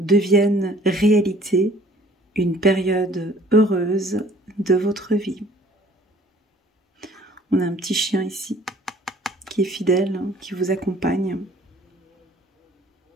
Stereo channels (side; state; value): both; normal; correlation 0.54